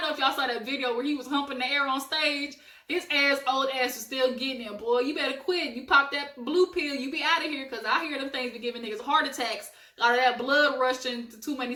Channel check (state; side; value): identical; both; correlation 1.00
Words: know if y'all saw that video where he was humping the air on stage. His old ass was still getting it, boy. You better quit. You pop that blue pill, you be out of here. Because I hear them things be giving niggas heart attacks out of that blood rushing to too many